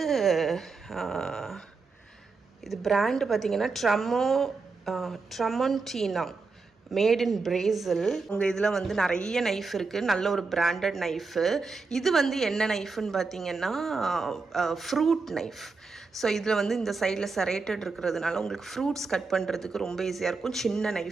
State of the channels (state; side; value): quieter; left; 4.3 dB